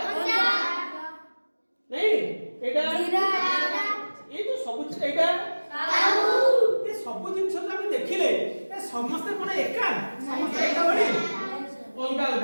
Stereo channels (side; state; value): both; inverted; correlation -1.00